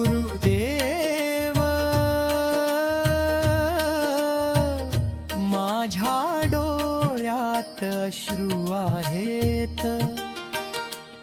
माझ्या डोळ्यात अश्रू आहेत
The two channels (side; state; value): both; identical; correlation 1.00